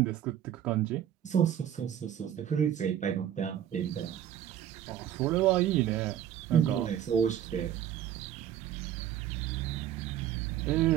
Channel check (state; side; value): quieter; left; 10.6 dB